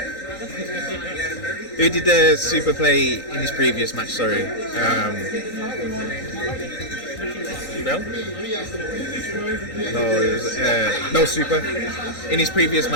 Who did the SUPA play in his previous match, sorry? Bel? No, it was, no SUPA. In his previous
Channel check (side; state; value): right; late; 1.6 ms